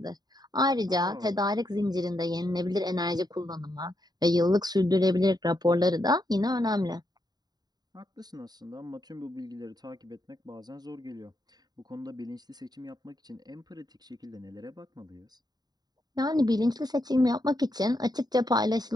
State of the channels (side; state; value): left; late; 0.20 ms